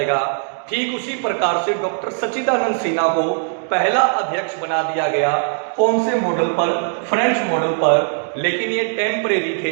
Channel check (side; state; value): left; silent; digital silence